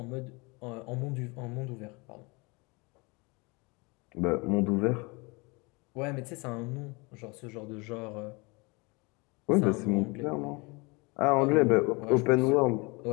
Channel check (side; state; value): right; quieter; 27.6 dB